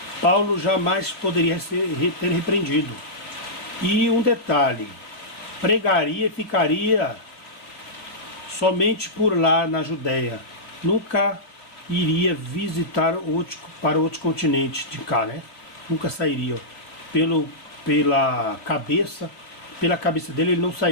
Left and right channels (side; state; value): right; late; 3.2 ms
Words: Paulo jamais poderia ter repreendido. E um detalhe, pregaria e ficaria somente por lá na Judéia, nunca iria visitar para outro continente de cá, né? Nunca sairia. Pela cabeça dele, ele não